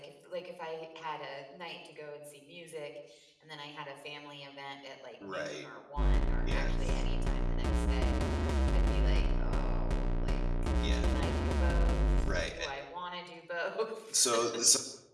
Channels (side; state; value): both; identical; correlation 1.00